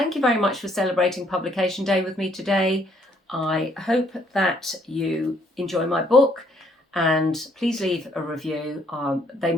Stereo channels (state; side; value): normal; both; correlation 0.67